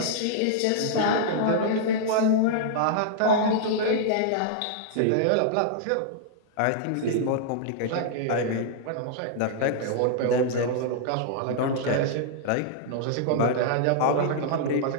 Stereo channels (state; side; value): different; both; correlation -0.01